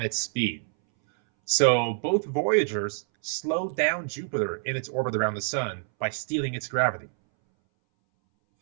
speed. So both Voyagers slowed down Jupiter in its orbit around the sun by stealing its gravity.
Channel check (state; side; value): silent; left; 60 dB below the other